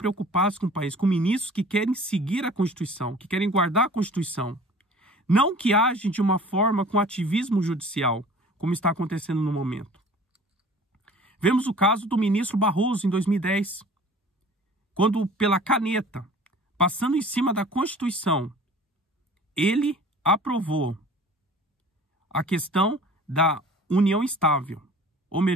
com o país, com ministros que querem seguir a Constituição, que querem guardar a Constituição, não que agem de uma forma com ativismo judicial, como está acontecendo no momento. Vemos o caso do ministro Barroso em 2010, quando pela caneta, passando em cima da Constituição, ele aprovou a questão da união estável, ou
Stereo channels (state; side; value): normal; both; correlation 0.46